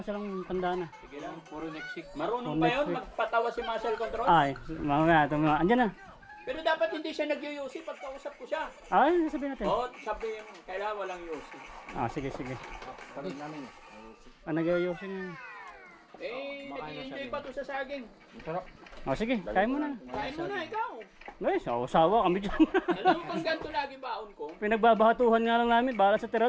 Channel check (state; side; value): identical; both; correlation 1.00